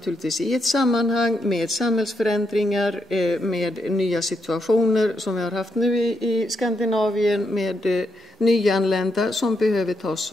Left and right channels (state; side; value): normal; both; correlation 0.80